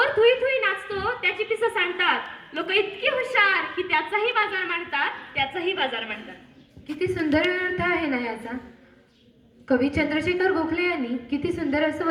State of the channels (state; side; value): identical; both; correlation 1.00